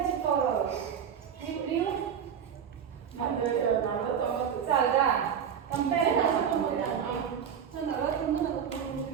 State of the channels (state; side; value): quieter; left; 8.0 dB